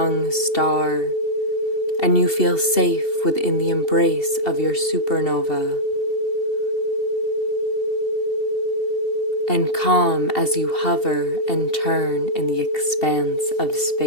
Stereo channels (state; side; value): late; right; 2.7 ms